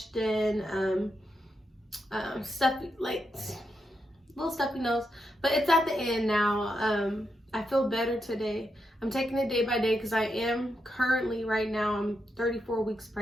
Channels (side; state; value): both; normal; correlation 0.84